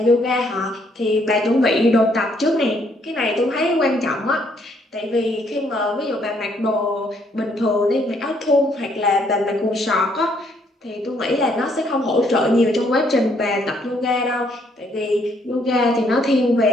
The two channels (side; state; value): both; normal; correlation 0.69